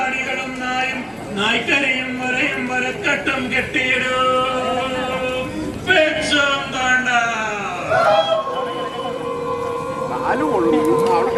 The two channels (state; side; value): identical; both; correlation 1.00